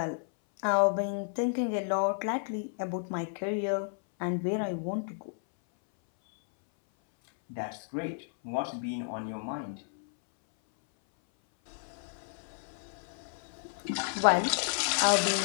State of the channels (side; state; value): right; silent; 57 dB below the other